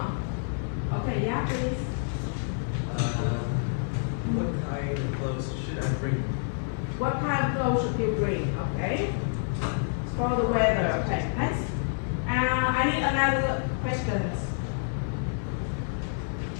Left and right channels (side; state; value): right; silent; digital silence